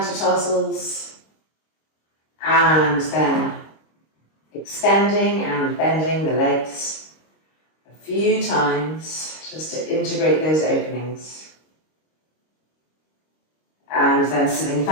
and then extending and bending the legs a few times just to integrate those openings. And then sitting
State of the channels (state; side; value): late; right; 26 ms